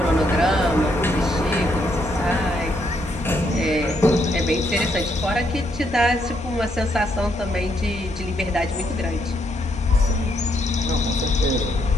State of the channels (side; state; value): both; normal; correlation 0.75